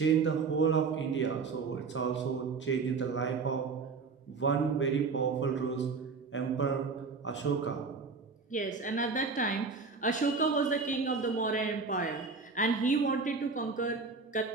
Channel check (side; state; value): left; quieter; 4.6 dB